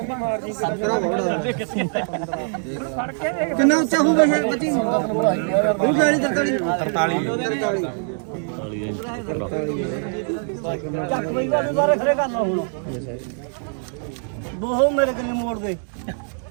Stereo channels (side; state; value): left; silent; 58 dB below the other